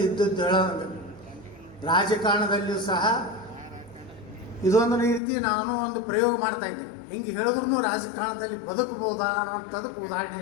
ಇದ್ದದ್ದು ಹೇಳೋದು. ರಾಜಕಾರಣದಲ್ಲಿಯೂ ಸಹ ಇದೊಂದು ರೀತಿ ನಾನು ಒಂದು ಪ್ರಯೋಗ ಮಾಡ್ತಾ ಇದ್ದೆ. ಹಿಂಗೆ ಹೇಳಿದ್ರು ರಾಜಕಾರಣದಲ್ಲಿ ಬದುಕಬಹುದಾ ಅನ್ನೋಂಥದಕ್ಕೆ ಉದಾಹರಣೆ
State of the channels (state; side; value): drops out; right; at 5.2 s